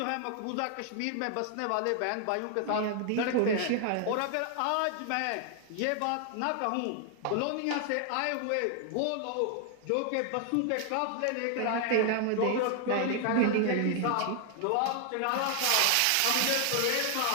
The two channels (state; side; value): different; both; correlation 0.00